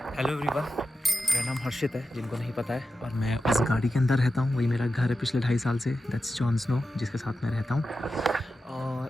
हेलो एवरीवन, मेरा नाम हर्षित है, जिनको नहीं पता है, और मैं उस गाड़ी के अंदर रहता हूँ। वही मेरा घर है पिछले 2.5 साल से। दैट्स जॉन स्नो, जिसके साथ मैं रहता हूँ। और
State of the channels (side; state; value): both; normal; correlation 0.91